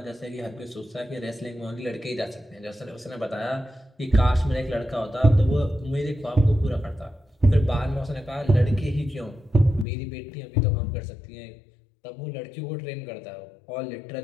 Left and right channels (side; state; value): right; drops out; at 9.9 s